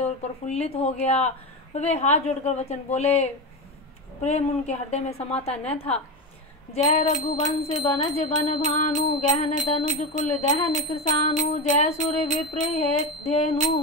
और प्रफुल्लित हो गया। वे हाथ जोड़कर वचन बोले, प्रेम उनके हृदय में समाता न था। जय रघुवंश बनज बन भानु, गहन तनुज कुल दहन कृसानु, जय सुर विप्र धेनु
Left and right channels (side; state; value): both; normal; correlation 0.17